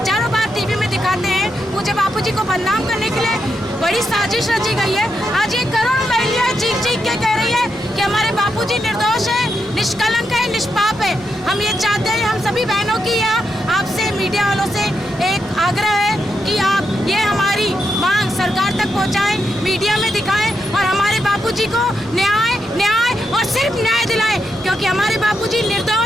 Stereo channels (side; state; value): both; normal; correlation 0.83